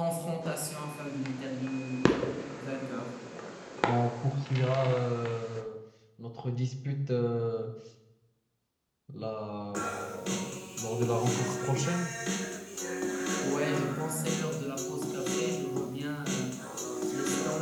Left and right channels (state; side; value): identical; both; correlation 1.00